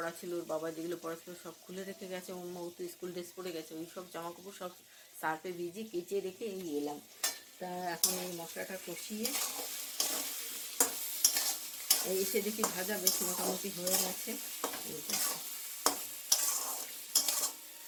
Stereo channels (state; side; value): identical; both; correlation 1.00